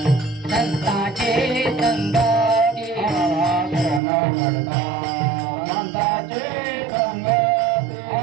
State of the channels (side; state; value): left; drops out; at 4.0 s